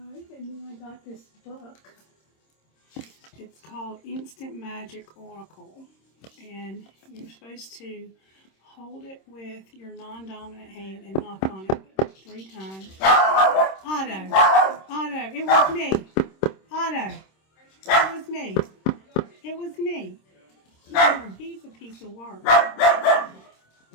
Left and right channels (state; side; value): late; right; 26 ms